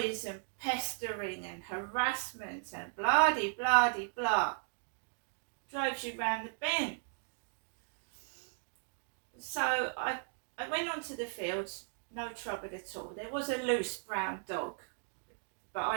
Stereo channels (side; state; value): left; silent; digital silence